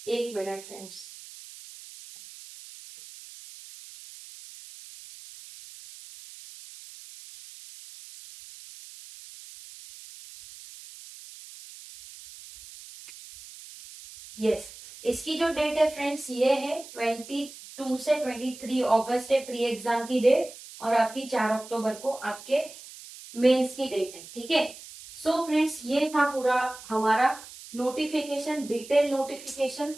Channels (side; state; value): right; noise; hiss, 16 dB below the sound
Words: एक मिनट फ्रेंड्स। यस, इसकी जो डेट है फ्रेंड्स ये है 22 से 23 अगस्त है प्री एग्जाम की डेट, और आपकी 4 अक्टूबर को आपके मेंस की डेट है, ठीक है। सो फ्रेंड्स ये था पूरा हमारा नोटिफिकेशन, डिटेल नोटिफिकेशन,